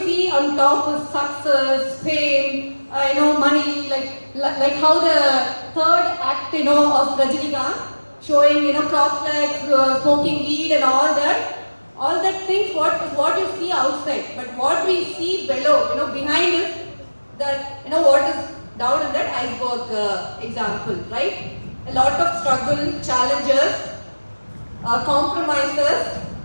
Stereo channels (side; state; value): both; inverted; correlation -1.00